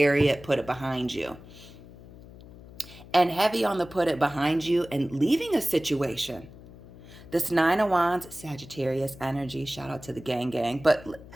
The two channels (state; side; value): noise; left; hum, 19 dB below the sound